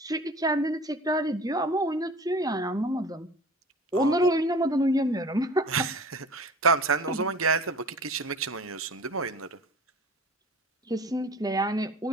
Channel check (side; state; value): both; normal; correlation 0.41